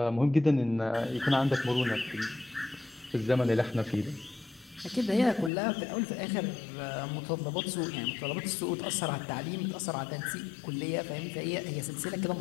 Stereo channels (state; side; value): drops out; right; at 5.5 s